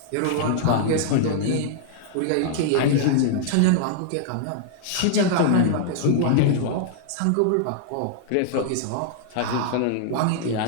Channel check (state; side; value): different; both; correlation -0.01